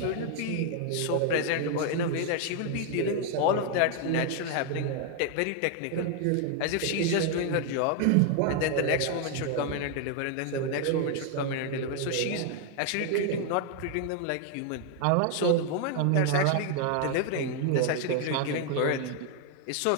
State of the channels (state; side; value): different; both; correlation 0.00